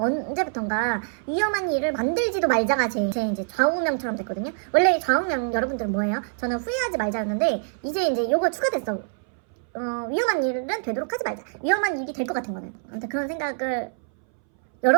위험한 일을 만들지도 말자가 제 이제 좌우명처럼 됐거든요. 원래 좌우명 여러분들은 뭐예요? 저는 후회하지 말자였는데 이제 요거 추가됐어. 위험한 일은 되도록 하지 말자. 위험한 일이 될 것 같은 거는. 아무튼 그런 생각을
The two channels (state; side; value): silent; left; 62 dB below the other